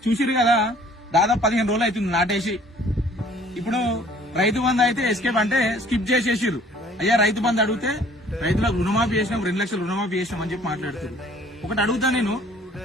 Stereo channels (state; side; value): normal; both; correlation 0.55